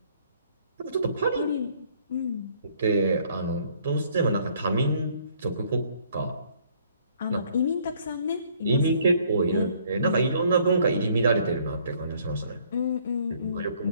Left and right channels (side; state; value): both; inverted; correlation -0.62